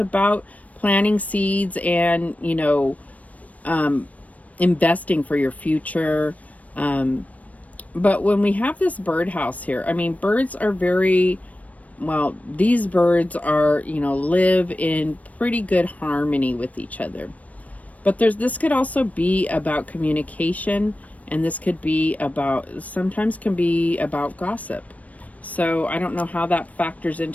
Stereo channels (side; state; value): right; late; 0.069 ms